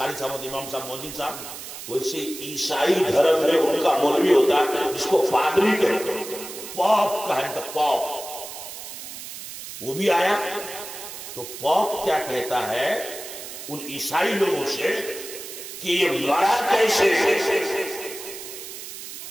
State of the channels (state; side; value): noise; right; hiss, 11 dB below the sound